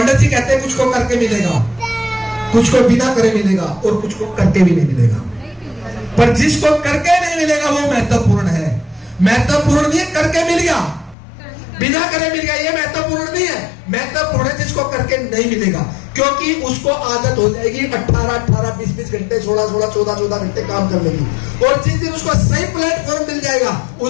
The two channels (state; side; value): drops out; right; at 11.2 s